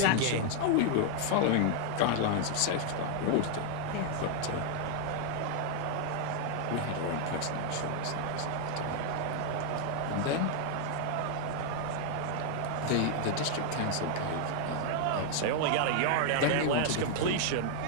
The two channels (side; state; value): both; different; correlation 0.00